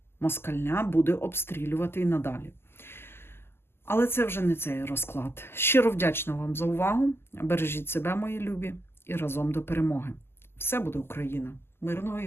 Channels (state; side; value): late; right; 0.12 ms